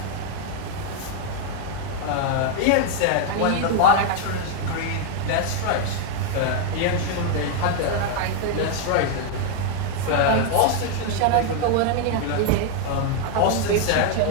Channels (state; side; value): different; both; correlation 0.00